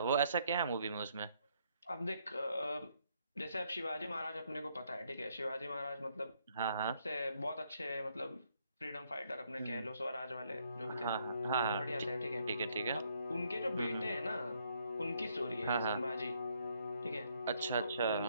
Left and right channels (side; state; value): both; inverted; correlation -0.71